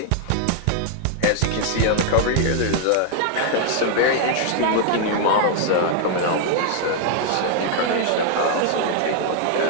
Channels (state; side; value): different; both; correlation 0.00